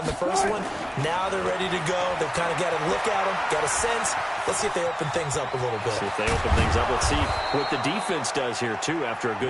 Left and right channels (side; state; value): both; identical; correlation 1.00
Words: the first one. Now they're ready to go. They've kind of got a look at them, got a sense. Let's see if they open things up a little bit. See if they open things up. Let's see what the defense does here, too, after a